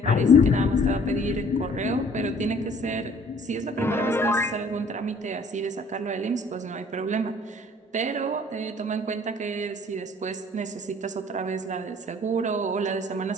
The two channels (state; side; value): normal; both; correlation 0.55